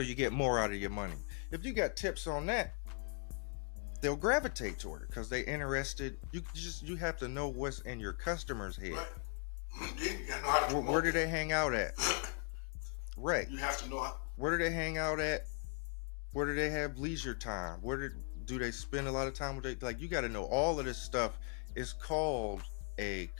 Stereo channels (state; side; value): quieter; right; 36.6 dB